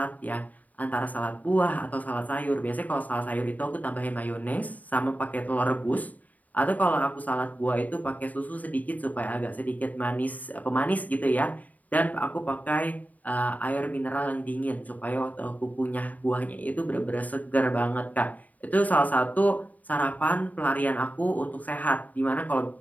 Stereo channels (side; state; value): right; late; 0.075 ms